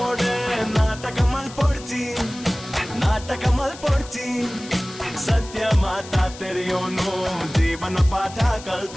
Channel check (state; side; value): noise; left; hiss, 16 dB below the sound